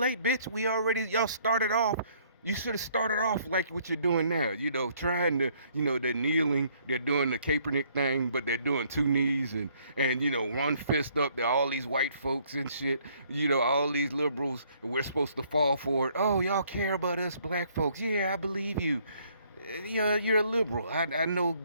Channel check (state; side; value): inverted; both; correlation -0.64